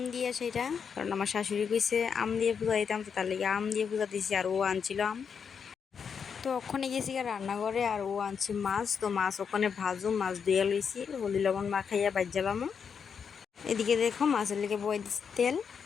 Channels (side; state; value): right; quieter; 6.6 dB